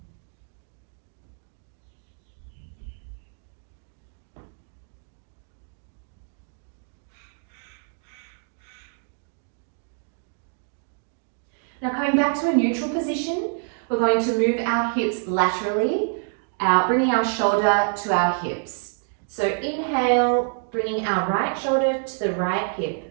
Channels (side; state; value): left; silent; 61 dB below the other